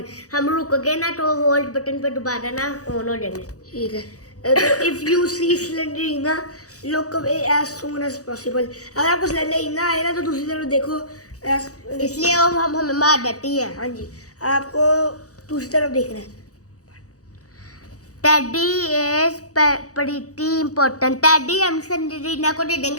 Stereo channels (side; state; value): right; late; 0.66 ms